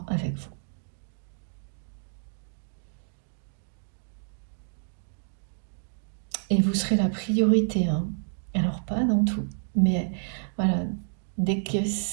avec vous. Et vous serez la priorité, hein. Alors pas dans tout, mais voilà, dès que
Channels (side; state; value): left; silent; digital silence